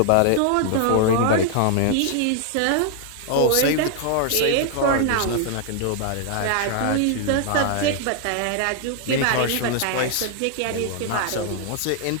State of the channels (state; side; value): different; both; correlation 0.00